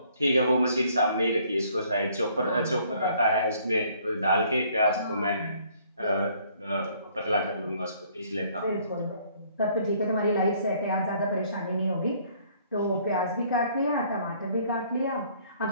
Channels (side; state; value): both; inverted; correlation -0.62